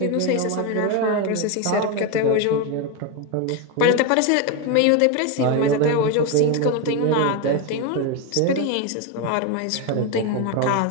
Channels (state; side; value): different; both; correlation 0.03